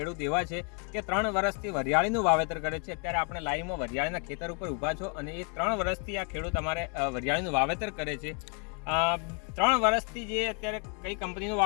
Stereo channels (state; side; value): quieter; right; 38.5 dB